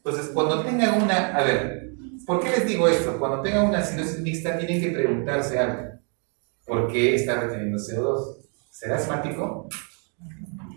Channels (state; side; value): quieter; left; 39.0 dB